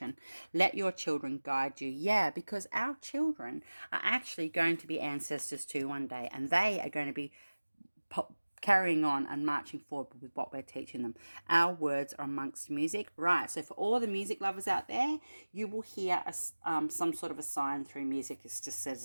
Let your children guide you. Yeah, because our children are actually going to be ancestors too one day. And they are going to be carrying on and marching forward with what we're teaching them. Our words are amongst music. Right, so for all the music lovers out there, you will hear some sort of a sign through music. It just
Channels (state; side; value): inverted; both; correlation -1.00